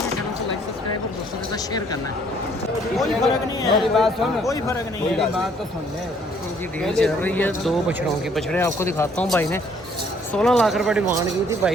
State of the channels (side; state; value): both; normal; correlation 0.62